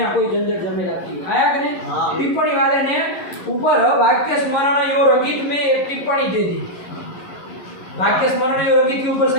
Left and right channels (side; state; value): right; late; 11 ms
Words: कोई झंझट झमेला की आया कि नहीं टिप्पणी वाले ने ऊपर वाक्य स्मरण यो रंगित में एक टिप्पणी दे दी वाक्य स्मरण यो रंगित के ऊपर